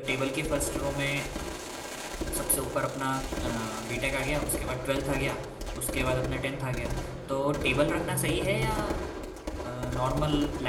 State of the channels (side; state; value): both; identical; correlation 1.00